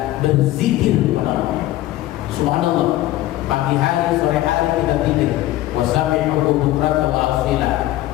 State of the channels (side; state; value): right; quieter; 15.3 dB